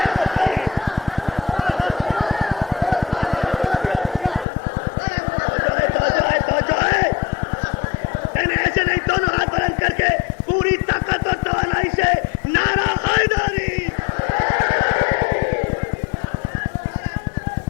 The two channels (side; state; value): right; drops out; at 4.5 s